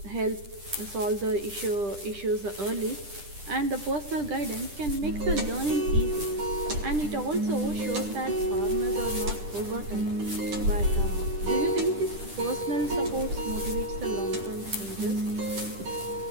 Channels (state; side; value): late; left; 10 ms